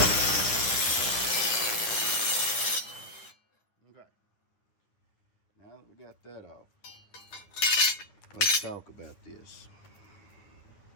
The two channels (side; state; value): right; late; 9.5 ms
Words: Okay. Now that we got that off, let's talk about this.